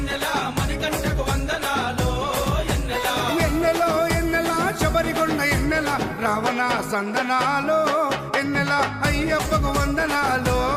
మణికంఠకు వందనాలో ఎన్నెల ఎన్నెలో ఎన్నెల శబరికొండ ఎన్నెల రావణ సందనాలో ఎన్నెల అయ్యప్పకు వందనాలో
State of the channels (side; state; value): both; identical; correlation 1.00